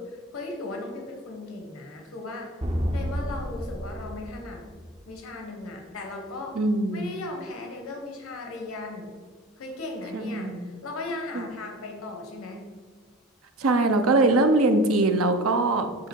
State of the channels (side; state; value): both; normal; correlation 0.34